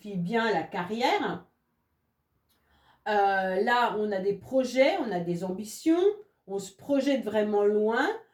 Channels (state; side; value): identical; both; correlation 1.00